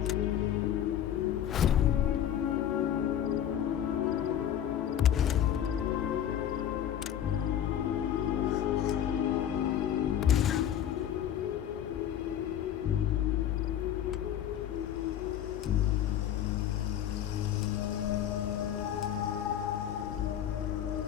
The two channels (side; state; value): right; quieter; 10.3 dB